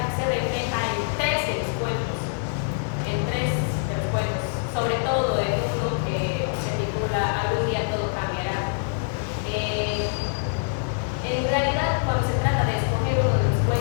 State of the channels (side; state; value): right; silent; 62 dB below the other